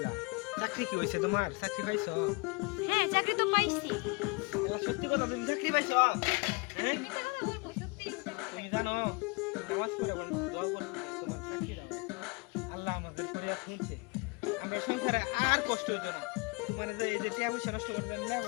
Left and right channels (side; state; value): right; quieter; 29.9 dB